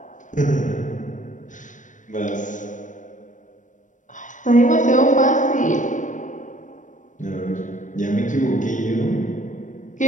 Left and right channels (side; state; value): right; late; 0.37 ms